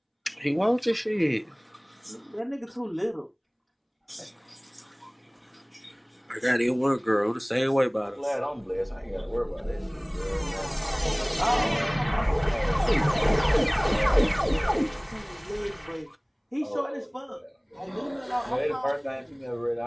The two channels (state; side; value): identical; both; correlation 1.00